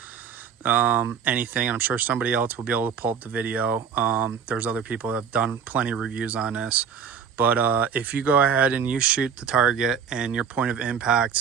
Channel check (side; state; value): left; quieter; 7.1 dB